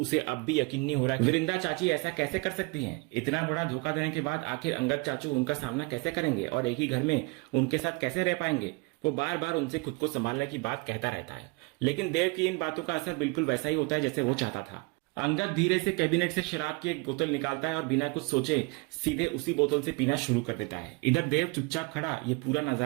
अब भी यकीन नहीं हो रहा है वृंदा चाची ऐसा कैसे कर सकती हैं। इतना बड़ा धोखा देने के बाद आखिर अंगद चाचू उनका सामना कैसे करेंगे और एक ही घर में उनके साथ कैसे रह पाएंगे। वो बार बार उनसे खुद को संभालने की बात कहता रहता है, लेकिन देव की इन बातों का असर बिल्कुल वैसा ही होता है जैसे वो चाहता था। अंगद धीरे से कैबिनेट से शराब की एक बोतल निकालता है और बिना कुछ सोचे सीधे उसी बोतल से पीना शुरू कर देता है। इधर देव चुपचाप खड़ा ये पूरा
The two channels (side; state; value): left; quieter; 27.0 dB